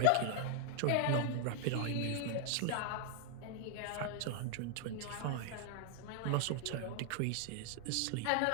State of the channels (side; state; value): both; different; correlation 0.00